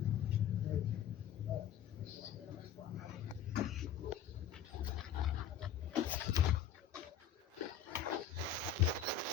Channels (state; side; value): quieter; right; 8.8 dB